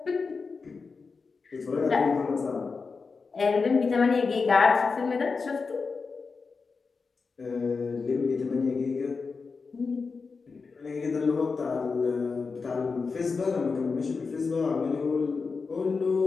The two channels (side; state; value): right; quieter; 4.7 dB